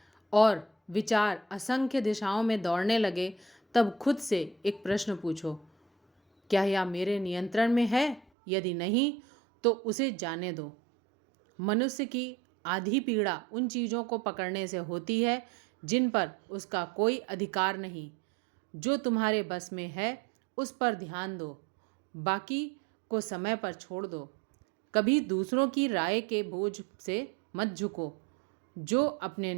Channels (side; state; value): left; drops out; at 8.2 s